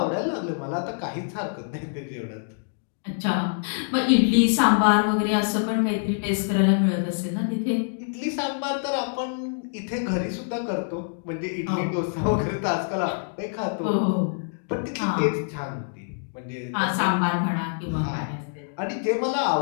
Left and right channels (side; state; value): right; silent; digital silence